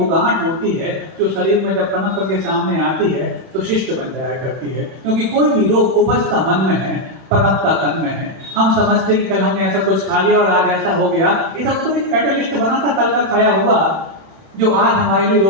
गांठ होती है जो शरीर में जब पनप के सामने आती है तो शिष्ट बन जाया करती है। क्योंकि कोई भी रोग उपजता मन में है, पनपता तन में है। हम समझते कि कल हमने ऐसा कुछ खा लिया और आज ऐसा हो गया, ये सब तो एक कैटलिस्ट बना था कल का खाया हुआ, जो आज हमारे लिए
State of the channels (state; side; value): late; left; 31 ms